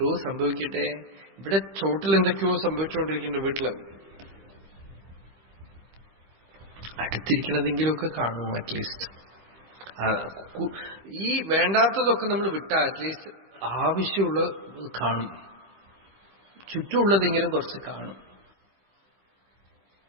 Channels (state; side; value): late; left; 15 ms